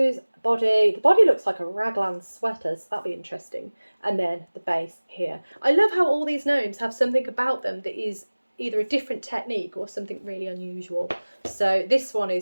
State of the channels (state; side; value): inverted; both; correlation -1.00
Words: body. The body looks like a raglan sweater, so that'll be interesting. And then the base here. I love how all these gnomes have something about them that is either a different technique or something really unusual. So this one